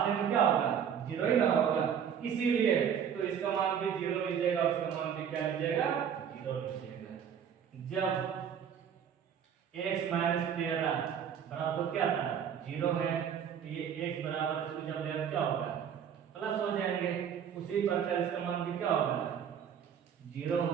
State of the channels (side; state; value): left; quieter; 8.2 dB